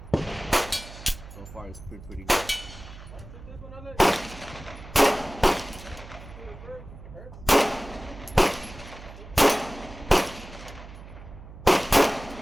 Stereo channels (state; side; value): noise; right; hum, 16 dB below the sound